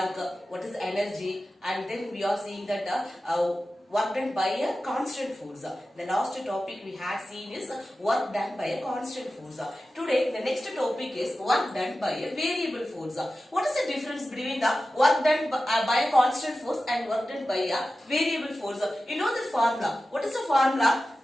what is energy, and then we are seeing that work done by a constant force. The last topic we had seen is work done by a constant force. Today the next topic is work done by a variable force. What is the difference between the work done by a constant force and work done by a variable force? You know this formula. What is the formula?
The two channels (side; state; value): both; normal; correlation 0.94